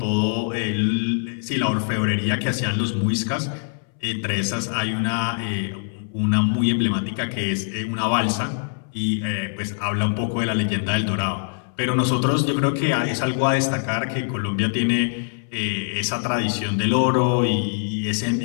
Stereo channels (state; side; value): silent; right; 63 dB below the other